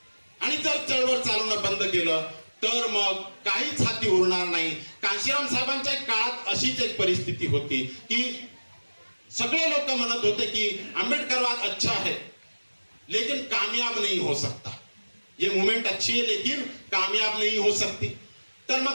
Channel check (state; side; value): inverted; both; correlation -1.00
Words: आणि जर चळवळ चालवणं बंद केलं तर मग काहीच हाती उरणार नाही. कांशीराम साहेबांच्या काळात अशीच एक परिस्थिती होती की सगळे लोक म्हणत होते की आंबेडकरवाद अच्छा है लेकिन कामयाब नहीं हो सकता, ये मूवमेंट अच्छी है लेकिन कामयाब नहीं हो सकती. तर